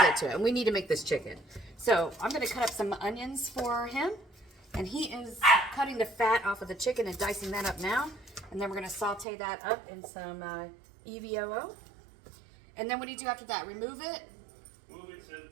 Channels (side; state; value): left; drops out; at 9.2 s